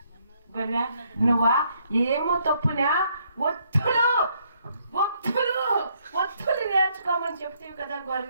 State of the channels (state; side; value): inverted; both; correlation -0.70